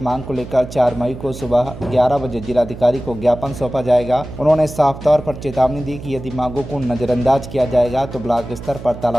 मांग को लेकर 4 मई को सुबह 11 बजे जिलाधिकारी को ज्ञापन सौंपा जाएगा। उन्होंने साफ तौर पर चेतावनी दी कि यदि मांगों को नजरअंदाज किया जाएगा तो ब्लॉक स्तर पर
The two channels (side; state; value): right; noise; hum, 12 dB below the sound